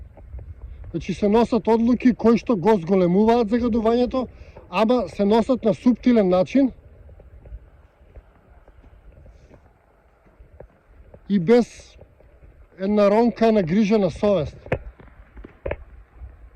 Значи се носат одлуки кои што го зголемуваат загадувањето, ама се носат на суптилен начин и без една ронка на грижа на совест.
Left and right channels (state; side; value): identical; both; correlation 1.00